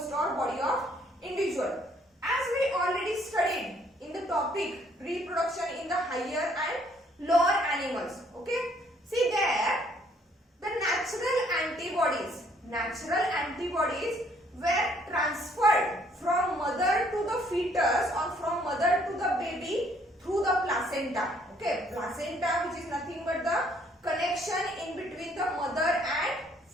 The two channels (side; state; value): both; normal; correlation 0.64